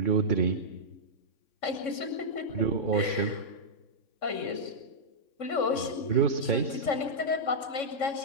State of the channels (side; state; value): right; late; 3.6 ms